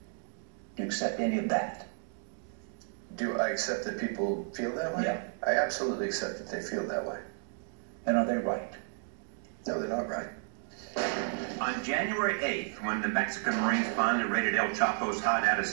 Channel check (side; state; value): left; silent; 56 dB below the other